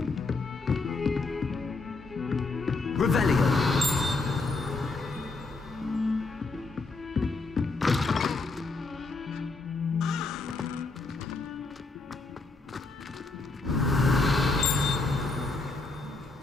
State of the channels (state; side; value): quieter; right; 3.6 dB